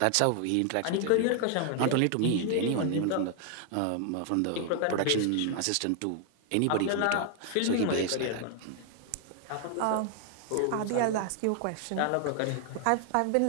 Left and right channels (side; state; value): both; different; correlation 0.00